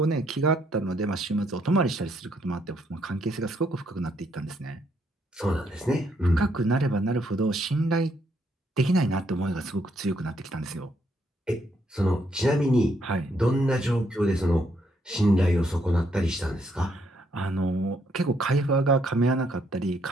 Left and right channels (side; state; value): both; normal; correlation 0.73